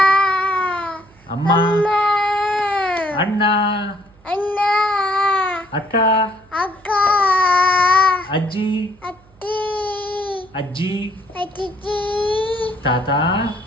ಅಮ್ಮ, ಅಣ್ಣ, ಅಣ್ಣ, ಅಕ್ಕ, ಅಕ್ಕ, ಅಜ್ಜಿ, ಅತ್ತಿ, ಅಜ್ಜಿ, ಅಜ್ಜಿ, ತಾತ,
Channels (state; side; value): noise; right; hum, 29 dB below the sound